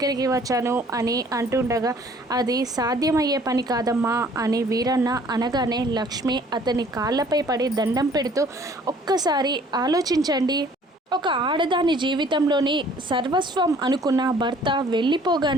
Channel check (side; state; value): both; normal; correlation 0.56